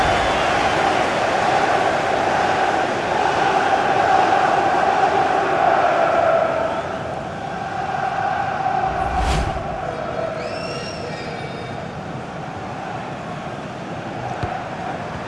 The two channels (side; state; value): both; identical; correlation 1.00